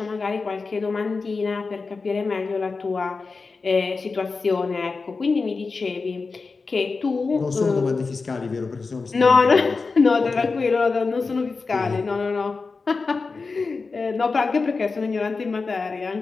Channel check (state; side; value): quieter; right; 4.3 dB